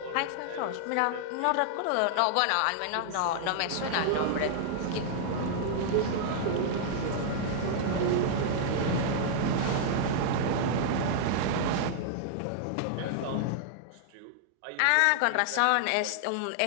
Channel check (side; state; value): both; different; correlation -0.01